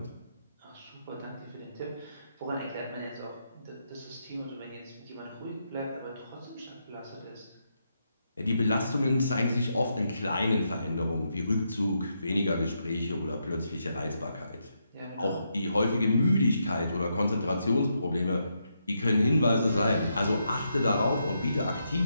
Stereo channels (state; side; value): inverted; both; correlation -0.81